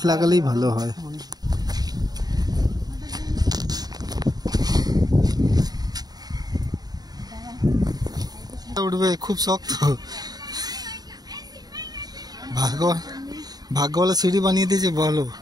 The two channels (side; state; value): left; late; 0.19 ms